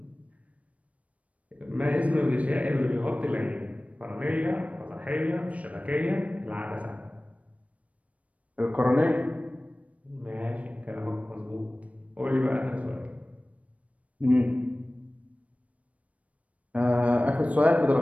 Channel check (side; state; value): left; late; 0.066 ms